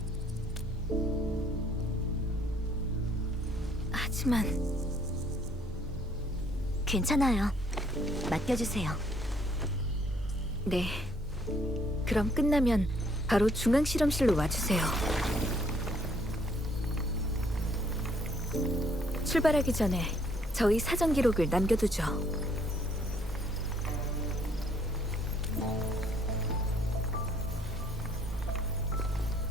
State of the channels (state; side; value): normal; both; correlation 0.65